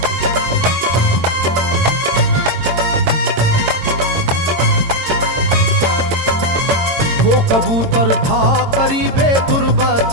वो कबूतर था करीबे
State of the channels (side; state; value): left; late; 22 ms